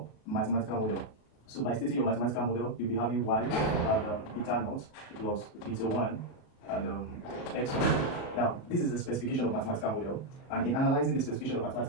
mathematical model. So by stating your mathematical model, you'll be having y at beta naught plus beta 1 and x1. Now, this is a specification of mathematical model, and in analyzing the specification of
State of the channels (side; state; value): right; late; 37 ms